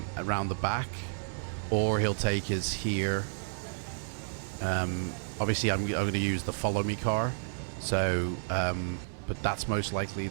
the back, or he'll take us here. Obviously, I'm going to use the follow me car, so but that's most likely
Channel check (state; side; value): silent; left; 56 dB below the other